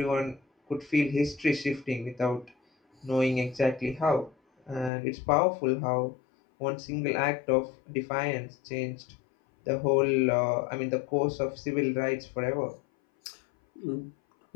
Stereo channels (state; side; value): drops out; right; at 4.9 s